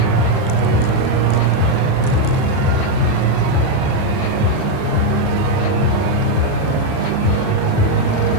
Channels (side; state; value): both; different; correlation 0.02